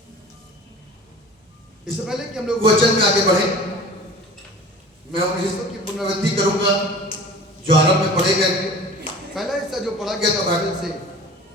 इससे पहले कि हम लोग वचन में आगे बढ़े, मैं उन हिस्सों की पुनरावृत्ति करूंगा जो आरंभ में पढ़े गए। पहला हिस्सा जो पढ़ा गया था बाइबल से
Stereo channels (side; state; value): both; normal; correlation 0.41